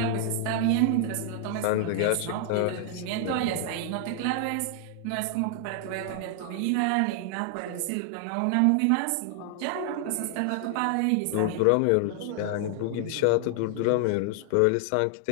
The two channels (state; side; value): different; both; correlation 0.00